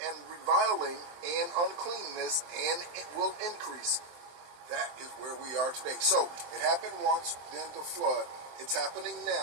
and reviling and uncleanness and it will increase. That is where we are today. So it happened once, then the flood. It's happening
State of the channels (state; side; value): late; left; 23 ms